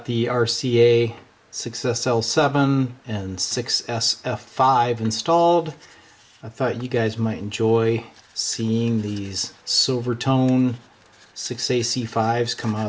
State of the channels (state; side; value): identical; both; correlation 1.00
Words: the RCA 6SL7 and 6SF5 installed. I thought you guys might enjoy seeing these silver tone 6AC5s come out